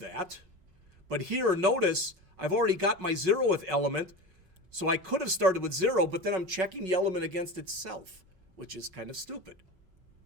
but here notice I've already got my 0th element, so I could have started with 0, but then I'm checking the element against itself, which is kind of stupid.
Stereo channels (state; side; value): late; left; 5.4 ms